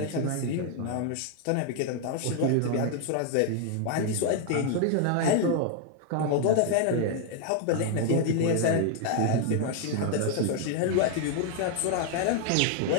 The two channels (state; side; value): different; both; correlation 0.00